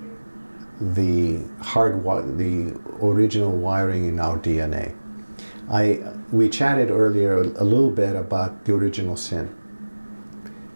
the original wiring in our DNA. We chatted earlier a little bit about the original sin,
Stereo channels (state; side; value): inverted; both; correlation -1.00